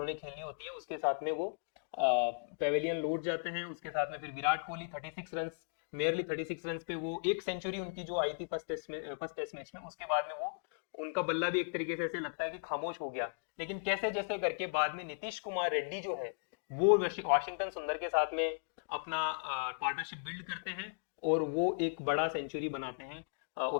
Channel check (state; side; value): silent; right; digital silence